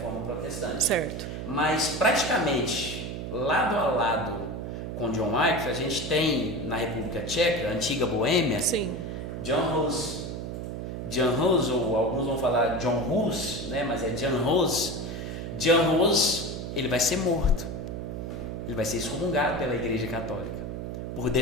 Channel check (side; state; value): right; noise; hum, 6 dB below the sound